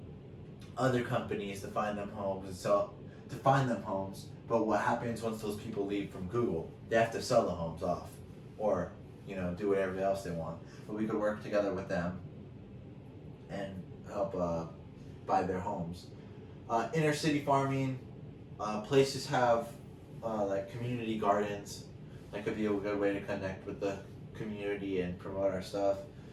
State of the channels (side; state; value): both; identical; correlation 1.00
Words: other companies to find them homes But what happens once those people leave from Google? They have to sell the homes off, or do whatever else they want. But we could work together with them and help buy their homes. Inner city farming, places have like community gardens. That could be a good way to connect with the community and promote our stuff.